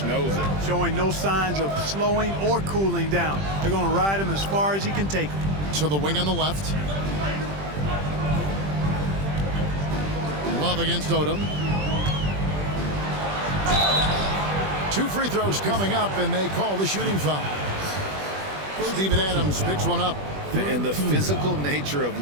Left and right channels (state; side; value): late; left; 20 ms